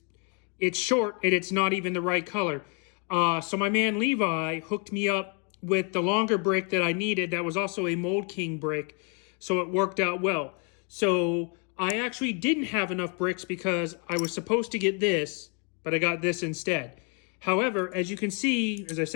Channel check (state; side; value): quieter; right; 37.6 dB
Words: it's short and it's not even the right color. So my man Levi hooked me up with the longer brick that I needed that was also a Mould King brick, so it worked out well. So I actually didn't have enough bricks because I was supposed to get this, but I got this instead. However, as you can see, as I